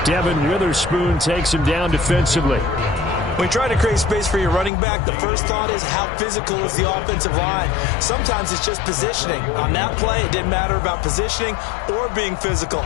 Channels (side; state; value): right; drops out; at 4.7 s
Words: Devin Witherspoon takes him down defensively. When you try to create space for your running back, the first thought is how physical is the offensive line. Sometimes it's just positioning. On that play, it didn't matter about positioning or being physical.